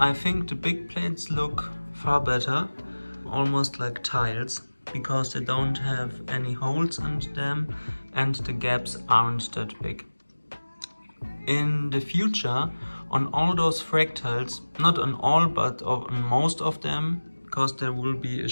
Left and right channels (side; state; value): both; inverted; correlation -1.00